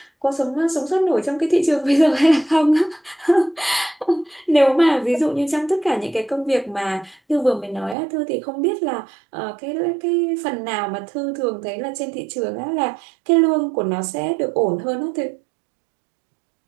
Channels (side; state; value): left; drops out; at 8.0 s